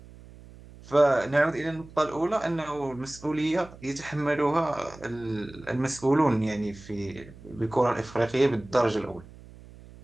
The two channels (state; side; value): noise; right; hum, 20 dB below the sound